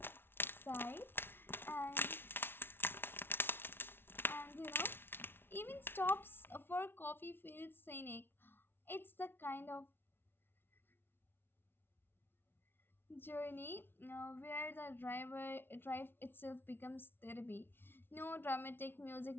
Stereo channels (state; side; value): late; right; 0.11 ms